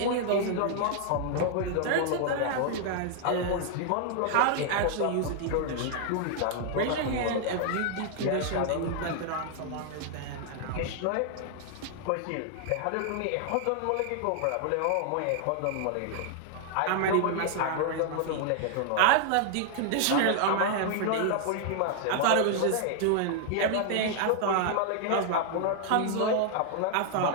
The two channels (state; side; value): different; both; correlation 0.00